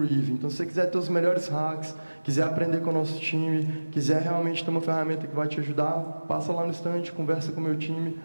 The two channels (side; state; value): both; inverted; correlation -1.00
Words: Então, se você quiser ter os melhores hacks, quiser aprender com o nosso time, quiser realmente ter uma ferramenta que vai te ajudar, passa lá no stand, conversa com o meu time,